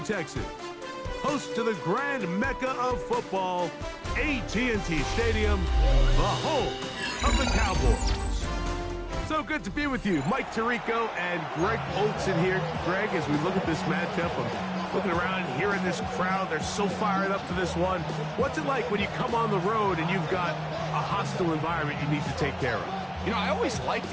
host to the grand mecca of football, AT&T Stadium, the home of the Cowboys. So good to be with you. Mike Tirico and Greg Olson here. Greg, as we look at this matchup, I'm looking around and hearing this crowd. They're so fired up for this one. What's it like when you come on the road and you've got a hostile environment you need to take care of? You know, I always liked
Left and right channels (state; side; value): identical; both; correlation 1.00